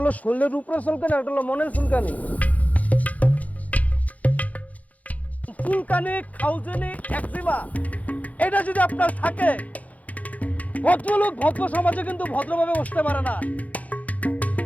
শরীরের উপরে চুলকানি, একটা হলো মনের চুলকানি। চুলকানি, খাউজনি, একজিমা এটা যদি আপনার থাকে, ভদ্রলোক ভদ্র সমাজে কিন্তু ভদ্রভাবে বসতে পারে না।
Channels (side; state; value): right; late; 0.072 ms